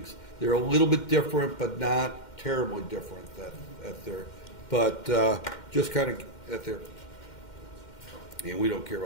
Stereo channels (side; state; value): right; late; 2.1 ms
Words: They're a little bit different, but not terribly different at there. But just kind of at there. And we don't care